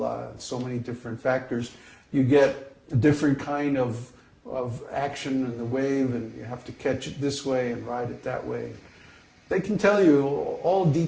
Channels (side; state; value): both; identical; correlation 1.00